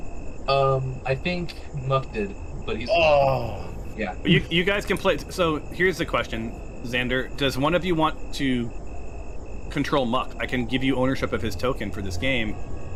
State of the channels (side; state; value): both; identical; correlation 1.00